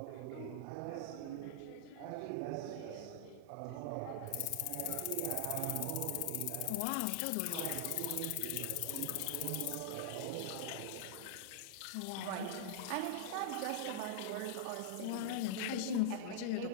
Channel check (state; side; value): different; both; correlation -0.01